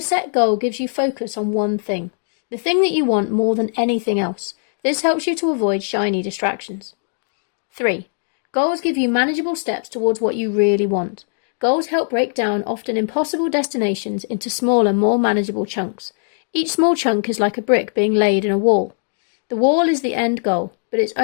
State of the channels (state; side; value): silent; right; digital silence